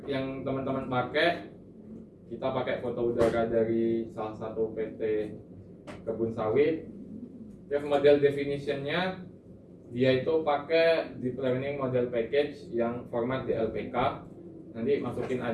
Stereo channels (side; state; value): both; identical; correlation 1.00